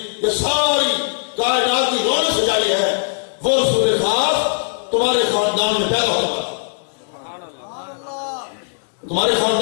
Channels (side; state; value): right; silent; digital silence